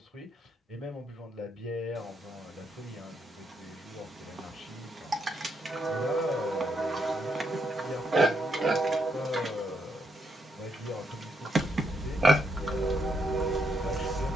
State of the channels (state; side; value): normal; both; correlation 0.77